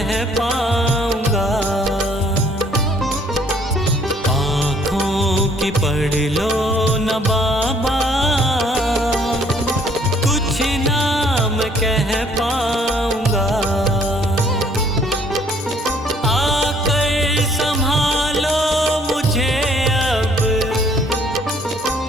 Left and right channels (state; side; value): normal; both; correlation 0.61